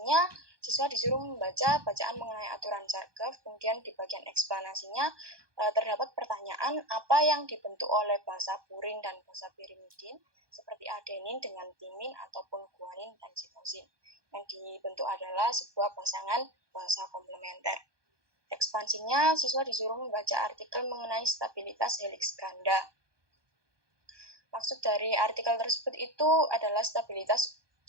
siswa disuruh membaca bacaan mengenai aturan Chargaff. Kemudian di bagian eksplanasinya terdapat pertanyaan apa yang dibentuk oleh basa purin dan basa pirimidin seperti adenin dengan timin ataupun guanin dan sitosin. Yang dibentuk adalah sebuah pasangan basa komplementer. Ekspansinya, siswa disuruh membaca artikel mengenai stabilitas heliks ganda. Maksud dari artikel tersebut itu adalah stabilitas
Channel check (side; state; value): left; late; 1.2 ms